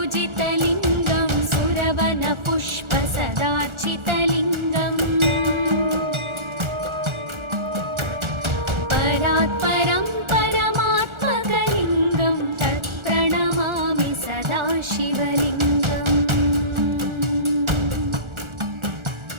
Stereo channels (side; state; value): left; late; 1.4 ms